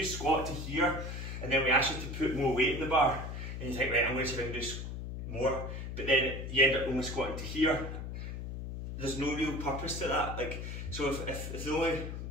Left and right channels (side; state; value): left; noise; hum, 6 dB below the sound